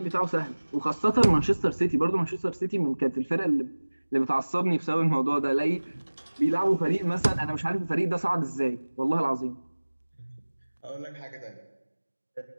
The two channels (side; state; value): both; inverted; correlation -1.00